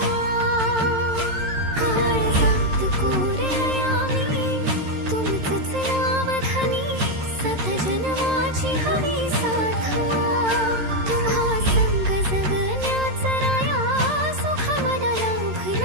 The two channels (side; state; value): left; late; 13 ms